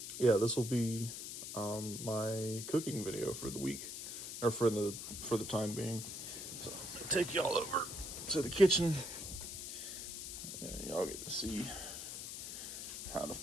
this will be my cooking video for the week, or for the time being. So I'm gonna take y'all over to the kitchen, and y'all get to see how to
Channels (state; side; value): noise; left; hiss, 7 dB below the sound